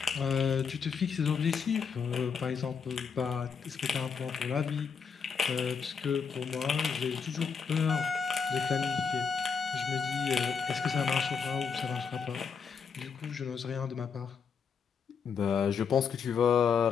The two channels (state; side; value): quieter; right; 6.1 dB